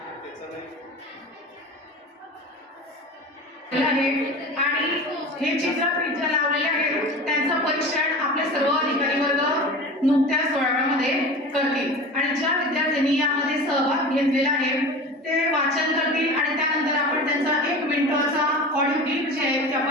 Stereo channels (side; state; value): both; normal; correlation 0.33